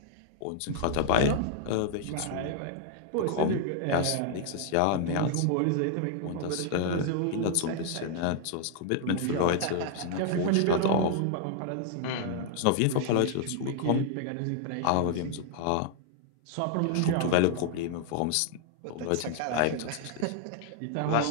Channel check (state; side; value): different; both; correlation 0.00